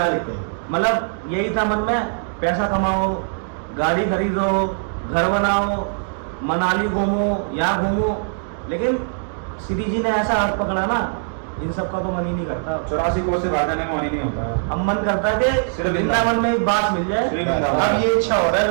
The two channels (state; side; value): silent; left; digital silence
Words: थे। मतलब यही था मन में, पैसा कमाओ, गाड़ी खरीदो, घर बनाओ, मनाली घूमो, यहाँ घूमो। लेकिन श्री जी ने ऐसा हाथ पकड़ा ना, इन सब का तो मन ही नहीं करता। 84 कोस से बाहर जाने का मन ही नहीं होता है। अब मन करता है कि सिर्फ वृंदावन में एक बात मिल जाए। श्री वृंदावन। अब ये इच्छा हो रहा है